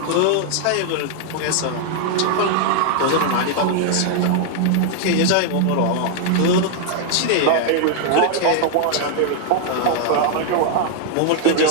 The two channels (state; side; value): different; both; correlation 0.00